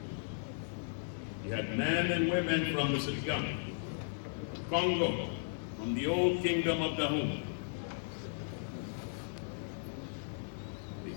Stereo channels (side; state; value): right; silent; 54 dB below the other